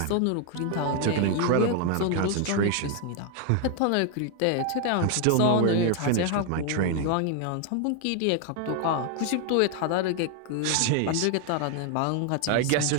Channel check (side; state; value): both; different; correlation 0.00